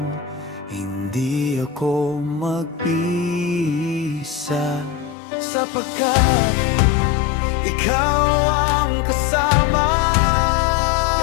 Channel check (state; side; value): drops out; right; at 5.2 s